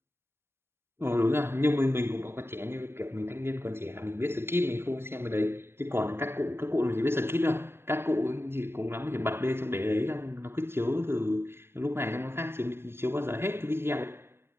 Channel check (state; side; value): late; left; 0.11 ms